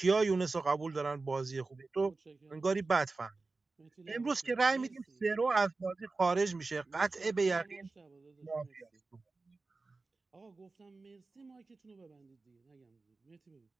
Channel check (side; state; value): left; quieter; 3.7 dB